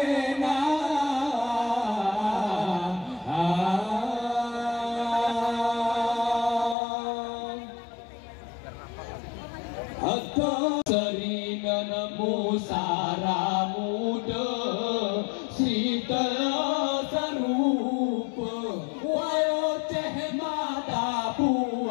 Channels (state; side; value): drops out; right; at 6.8 s